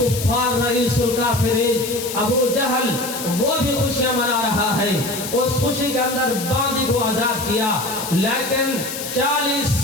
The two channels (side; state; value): left; noise; hiss, 7 dB below the sound